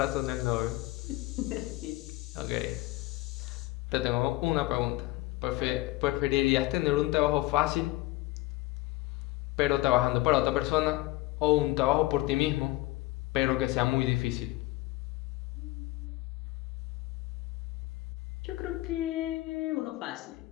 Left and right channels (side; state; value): right; quieter; 19.4 dB